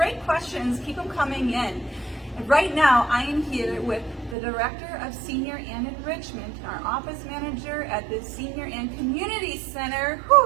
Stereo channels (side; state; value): left; drops out; at 4.4 s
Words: questions, keep them coming in. And right now, I am here with the Director of Senior and Enrichment, our office manager at the Senior and Community Center.